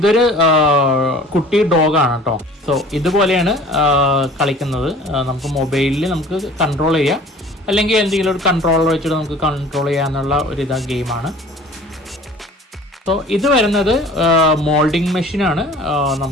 കുട്ടി ഡോഗാണ് കേട്ടോ. സോ ഇതുപോലെയാണ് കളിക്കുന്നത്. നമുക്ക് മൊബൈലിൽ നമുക്ക് കൺട്രോൾ ചെയ്യാം, അല്ലെങ്കിൽ എന്തെങ്കിലും ഒരു കൺട്രോളർ വെച്ചിട്ട് നമുക്ക് കൺട്രോൾ ചെയ്യാന്നുള്ള ഒരു ഗെയിമാണ്. സോ ഇത് വരുന്നത് മോൾഡിങ് മെഷീനാണ്.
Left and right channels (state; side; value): normal; both; correlation 0.47